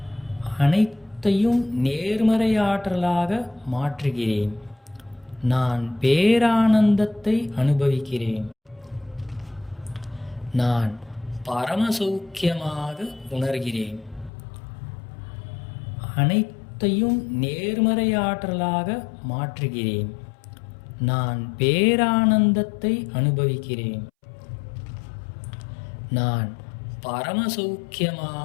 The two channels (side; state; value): right; drops out; at 14.3 s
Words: அனைத்தையும் நேர்மறையாற்றலாக மாற்றுகிறேன். நான் பேரானந்தத்தை அனுபவிக்கிறேன். நான் பரமசௌக்கியமாக உணர்கிறேன். அனைத்தையும் நேர்மறையாற்றலாக மாற்றுகிறேன். நான் பேரானந்தத்தை அனுபவிக்கிறேன். நான்